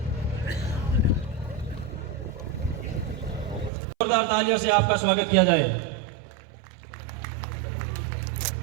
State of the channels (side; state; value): left; drops out; at 3.7 s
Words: जोरदार तालियों से आपका स्वागत किया जाए।